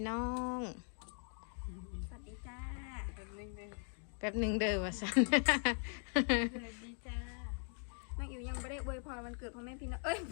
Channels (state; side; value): silent; right; 51 dB below the other